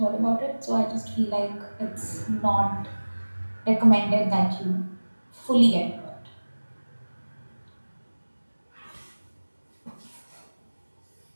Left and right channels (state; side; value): inverted; both; correlation -1.00